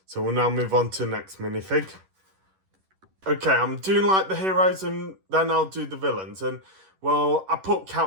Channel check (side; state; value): left; late; 11 ms